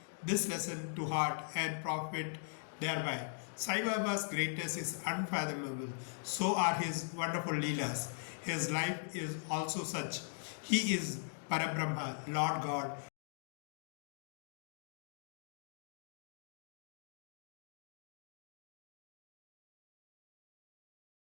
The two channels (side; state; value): right; silent; digital silence